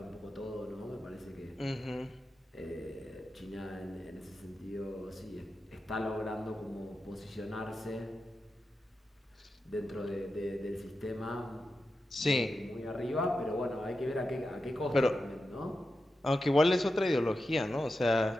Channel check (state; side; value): normal; both; correlation 0.90